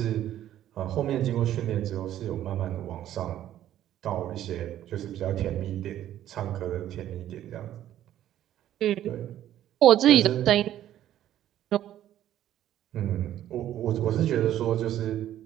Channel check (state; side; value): quieter; left; 12.1 dB